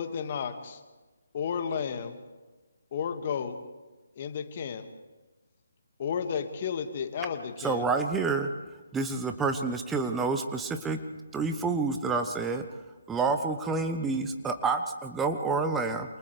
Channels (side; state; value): both; normal; correlation 0.00